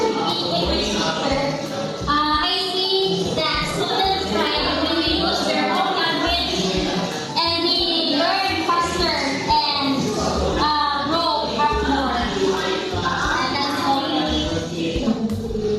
be English teacher, I see that students thrive when they use their own language and they learn faster and grow up more. And that's all.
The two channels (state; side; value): identical; both; correlation 1.00